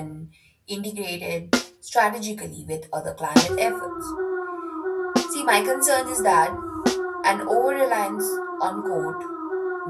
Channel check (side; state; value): both; identical; correlation 1.00